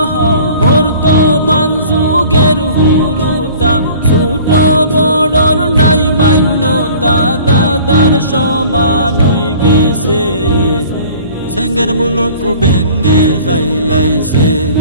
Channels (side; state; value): both; inverted; correlation -0.47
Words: বর্তমান যুগের হুরুতা ছোট বড়র নাই মান্যতা দাদার সমান হয়ে গেছে সেঙ্গের মুলুক বেঙ্গে খাইলাইছে